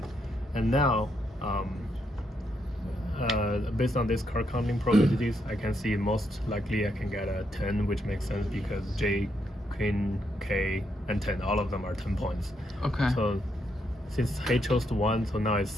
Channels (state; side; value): normal; both; correlation 0.78